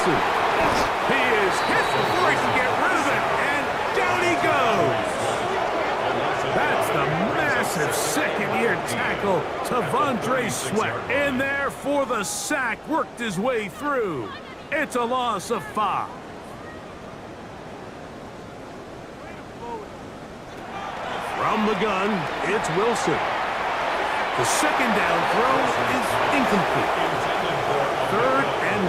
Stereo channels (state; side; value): identical; both; correlation 1.00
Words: He is hit before he can get rid of it, and down he goes. That's the massive 2nd-year tackle to T'Vondre Sweat. In there for the sack, worked his way through. It's a loss of 5. From the gun, it's Wilson. The 2nd down throw is incomplete. 3rd and